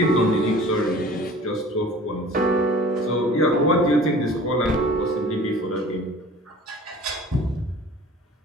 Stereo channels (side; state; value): both; normal; correlation 0.45